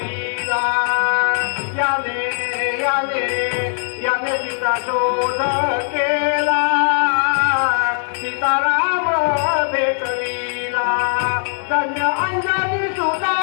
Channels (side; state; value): right; silent; 66 dB below the other